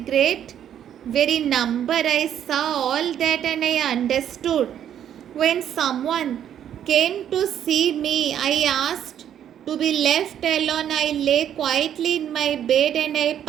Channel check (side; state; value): left; quieter; 9.9 dB